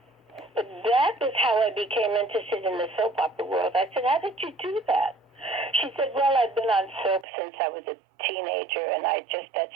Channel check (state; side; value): drops out; left; at 7.2 s